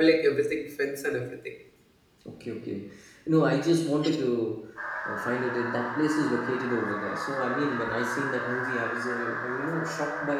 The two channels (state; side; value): identical; both; correlation 1.00